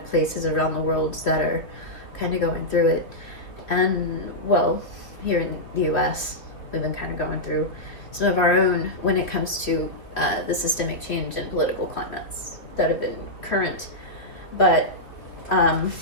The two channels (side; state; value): right; late; 3.3 ms